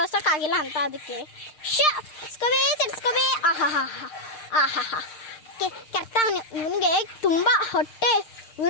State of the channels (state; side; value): late; right; 6.6 ms